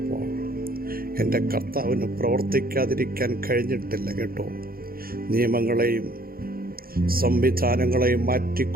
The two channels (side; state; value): left; late; 0.43 ms